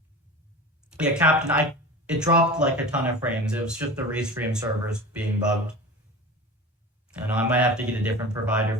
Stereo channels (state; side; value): normal; both; correlation 0.33